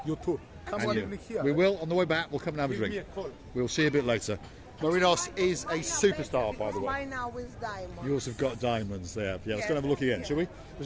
You too. Come And on you. in here. We will. On the way back, we'll come and have a Give me drink. a call. We'll see you a bit later. Marinos is a superstar, by the way. Mine now with diamonds. Yours have got diamonds there. Yeah, let's go and have a look again, shall we?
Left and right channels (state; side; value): identical; both; correlation 1.00